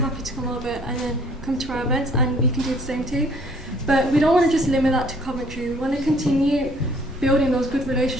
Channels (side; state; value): both; normal; correlation 0.58